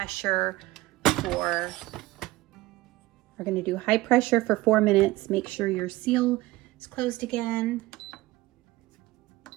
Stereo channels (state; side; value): quieter; left; 18.9 dB